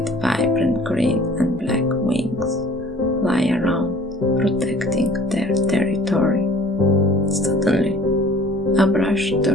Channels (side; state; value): both; normal; correlation 0.51